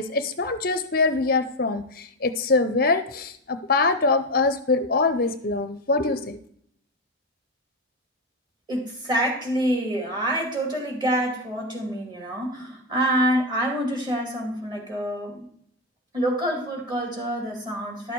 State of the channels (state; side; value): normal; both; correlation 0.11